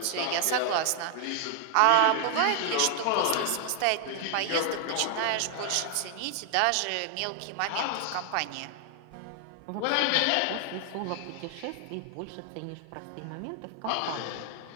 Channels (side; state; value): both; different; correlation 0.00